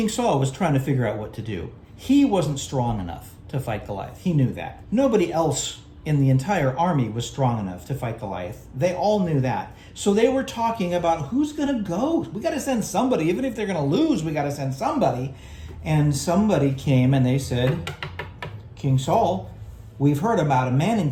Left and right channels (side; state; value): both; identical; correlation 1.00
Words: Saul was trying to figure out what to do. He wasn't strong enough to fight Goliath. He knew that. Nobody else in the entire army was strong enough to fight Goliath. They all knew that. So they were talking about who's going to go. We got to send somebody. Even if they're going to lose, we got to send somebody. And somebody came and they said, King Saul, we've heard about a man